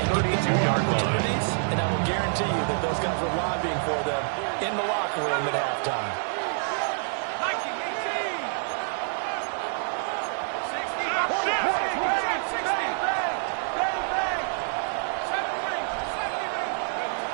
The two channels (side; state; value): left; silent; 60 dB below the other